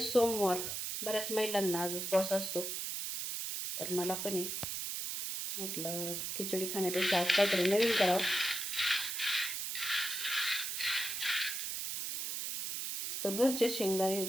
सोमवार. बऱ्याच महिलांना आज उपवास असतो. तर मला पण म्हटलं खिचडी खाण्यापेक्षा आज काहीतरी नवीन करावं. तर घरचे शेंगदाणे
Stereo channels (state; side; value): noise; right; hiss, 3 dB below the sound